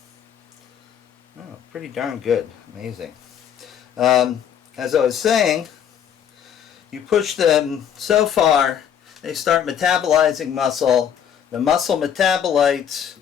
Oh, pretty darn good. Amazing. As I was saying, you push them so far, they start metabolizing muscle. The muscle metabolites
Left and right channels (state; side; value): quieter; right; 8.8 dB